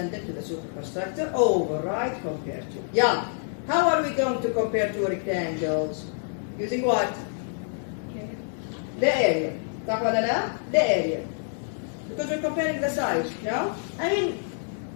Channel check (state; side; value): silent; right; digital silence